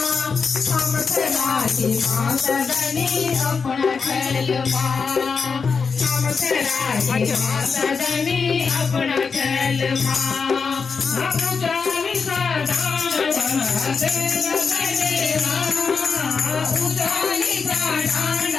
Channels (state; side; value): quieter; right; 5.3 dB